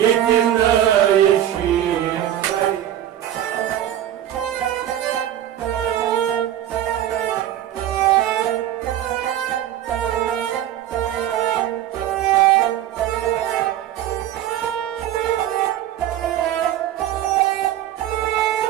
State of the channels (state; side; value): quieter; left; 11.8 dB